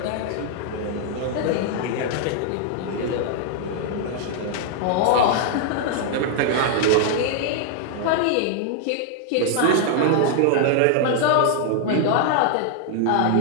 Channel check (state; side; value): different; both; correlation 0.00